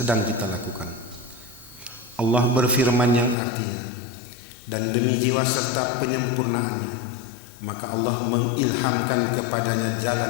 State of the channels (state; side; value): drops out; right; at 3.4 s